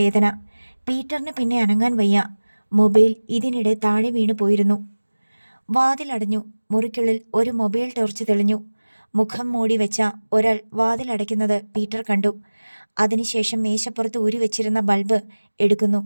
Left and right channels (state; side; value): inverted; both; correlation -1.00